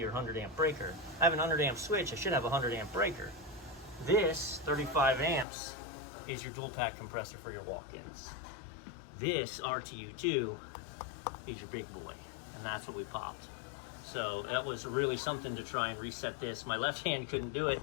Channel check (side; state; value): right; drops out; at 5.5 s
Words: or 100 amp breaker. I have an 100 amp switch, I should have a 100 amp breaker. This 35 amps is your dual pack compressor for your walk-ins. This RTU2 is your big boy, and that's what we popped. So that was really something to try and reset this. My left hand couldn't do it,